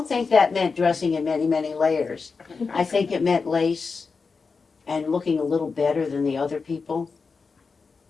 think that meant dressing in many, many layers. I think it meant lace and looking a little better than the other people,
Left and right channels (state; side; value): quieter; right; 4.8 dB